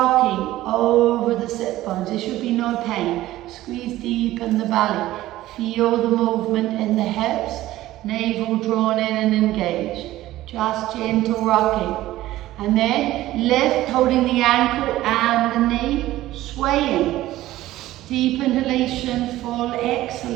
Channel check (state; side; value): quieter; left; 15.6 dB